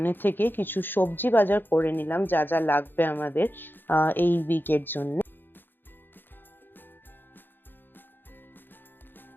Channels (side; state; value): right; late; 0.096 ms